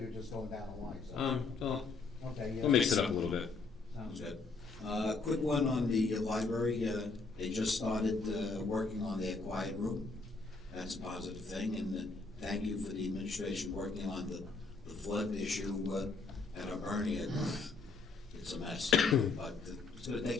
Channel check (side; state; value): right; quieter; 4.0 dB